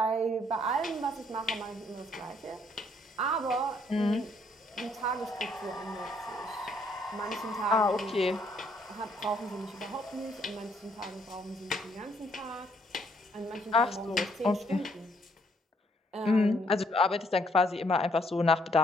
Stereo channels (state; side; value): normal; both; correlation 0.69